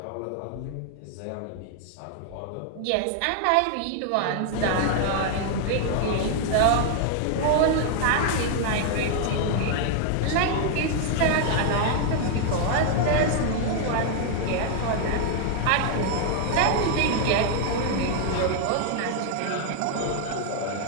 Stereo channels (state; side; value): different; both; correlation 0.00